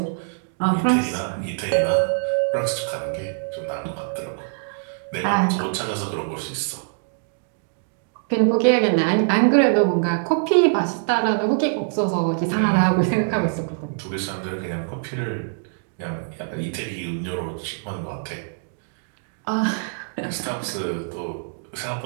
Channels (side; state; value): left; silent; digital silence